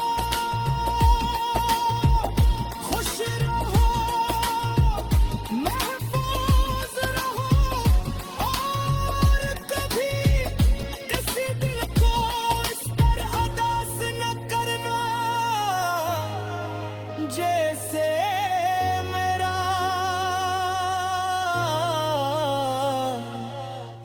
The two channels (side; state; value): both; identical; correlation 1.00